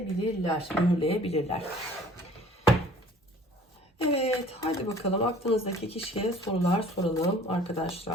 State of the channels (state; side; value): normal; both; correlation 0.51